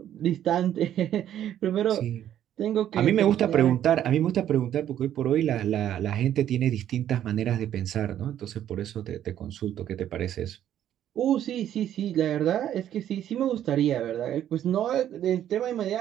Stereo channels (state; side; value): quieter; left; 11.0 dB